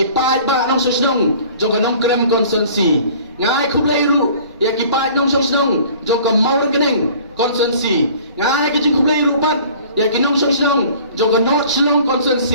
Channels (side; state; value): both; inverted; correlation -0.49